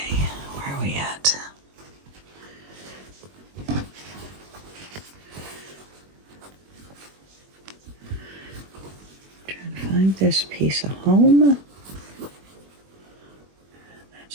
where are we at? Trying to find this piece of home.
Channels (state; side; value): late; left; 21 ms